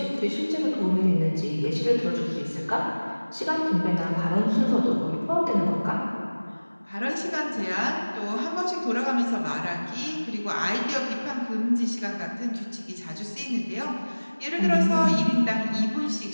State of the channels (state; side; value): inverted; both; correlation -1.00